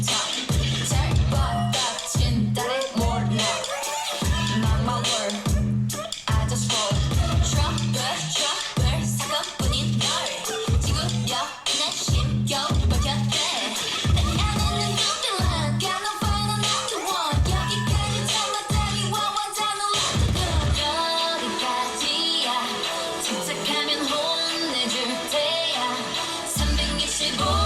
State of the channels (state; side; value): identical; both; correlation 1.00